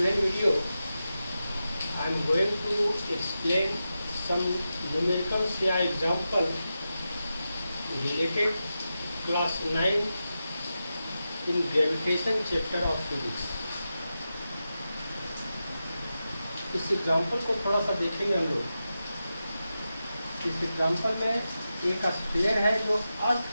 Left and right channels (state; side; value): inverted; both; correlation -0.91